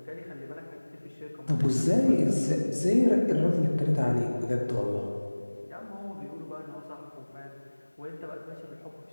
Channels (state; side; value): inverted; both; correlation -1.00